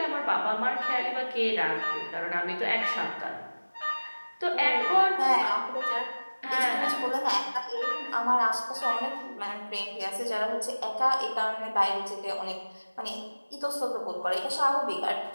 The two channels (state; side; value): inverted; both; correlation -1.00